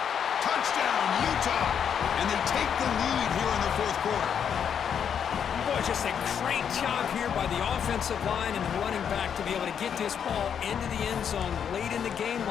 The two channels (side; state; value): right; quieter; 7.9 dB